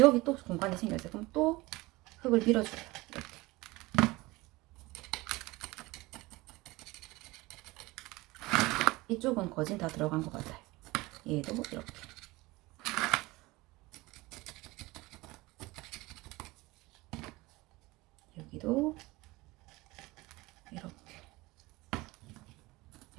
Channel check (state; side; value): quieter; left; 21.3 dB